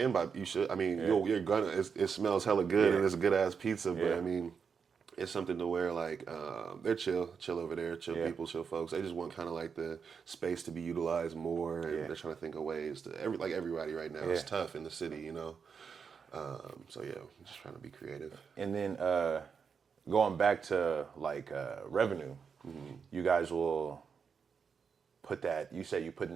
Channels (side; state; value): left; quieter; 6.2 dB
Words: buy. You should. I mean, you're gonna. It smells hella good and it's a good ass pizza. But I mean, it's something to where like they're chill over there, chill people, chill folks. They just want kind of like the space to be utilized more, and they're trying to think of ways to everybody right now. It's tough in the city, So yeah, I'm just trying to be creative. And then going back to like revenue, you guys will. Put that, you said you're putting